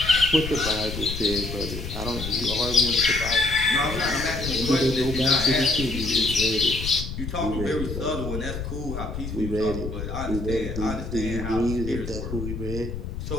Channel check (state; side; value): noise; left; rumble, 6 dB below the sound